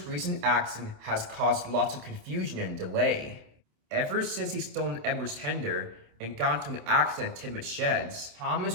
recent accident has caused lots of confusion and delay. Ever since he stolen Edward's tender and got into an accident at Tidmouth Sheds,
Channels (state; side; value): late; left; 27 ms